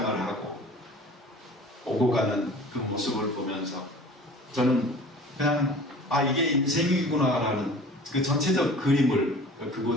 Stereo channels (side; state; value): both; normal; correlation 0.44